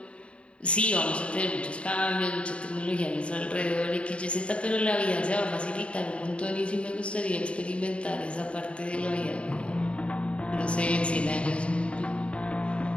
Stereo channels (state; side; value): late; right; 0.060 ms